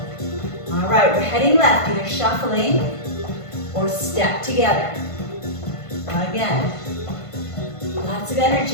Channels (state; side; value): late; right; 1.5 ms